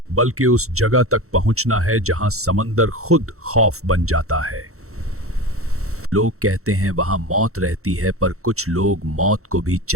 बल्कि उस जगह तक पहुंचना है जहां समंदर खुद खौफ बन जाता है। लोग कहते हैं वहां मौत रहती है, पर कुछ लोग मौत को भी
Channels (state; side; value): late; left; 0.64 ms